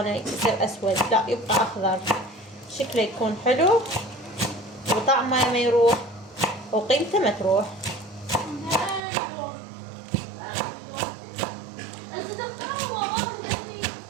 يصير أسود، لا يبقى أخضر، شكله يكون حلو وطعمه ما يروح وقيمته ما تروح.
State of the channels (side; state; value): left; drops out; at 9.0 s